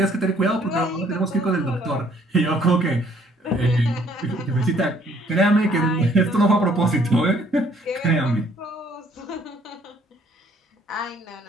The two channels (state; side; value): normal; both; correlation 0.62